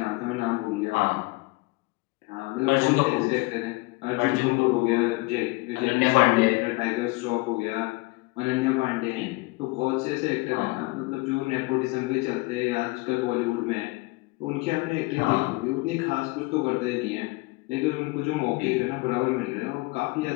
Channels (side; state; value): right; quieter; 24.6 dB